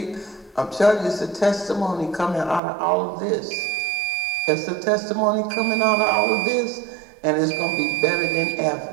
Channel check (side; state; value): left; drops out; at 2.6 s